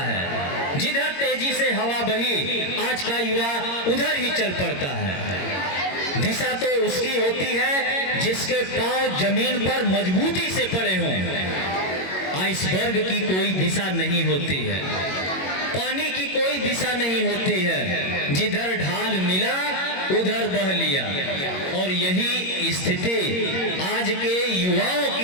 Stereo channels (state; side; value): late; right; 22 ms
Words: है। जिधर तेजी से हवा बही, आज का युवा उधर ही चल पड़ता है। दिशा तो उसकी होती है जिसके पांव जमीन पर मजबूती से पड़े हों। आइसबर्ग की कोई दिशा नहीं होती है, पानी की कोई दिशा नहीं होती है। जिधर ढाल मिला उधर बह लिया। और यही स्थिति आज के युवाओं